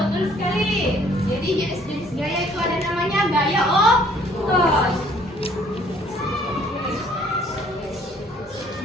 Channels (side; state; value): both; normal; correlation 0.60